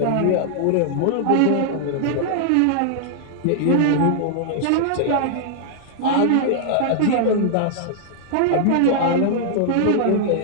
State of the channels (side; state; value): both; different; correlation -0.01